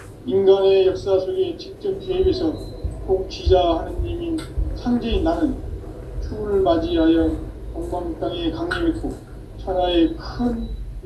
인간의 역사 속에 직접 개입해서 통치자 하느님인 상제인 나는 추운을 맞이하여 동방 땅에 강림했고 천하에 큰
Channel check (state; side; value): identical; both; correlation 1.00